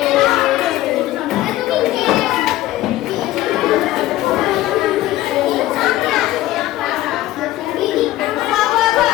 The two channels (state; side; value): quieter; right; 15.5 dB